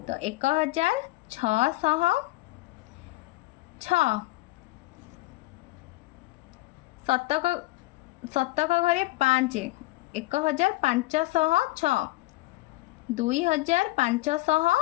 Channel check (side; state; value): right; quieter; 19.8 dB